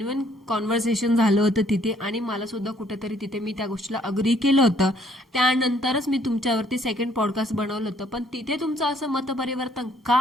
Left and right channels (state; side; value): normal; both; correlation 0.64